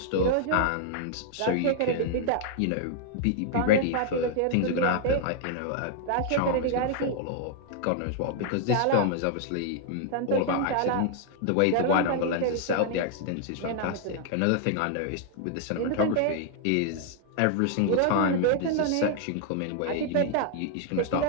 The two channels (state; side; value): different; both; correlation 0.00